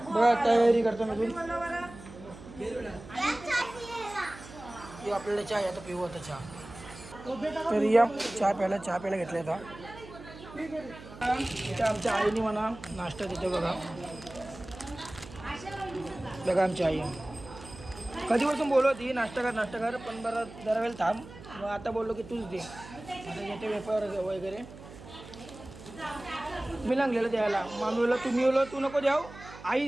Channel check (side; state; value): right; noise; hum, 16 dB below the sound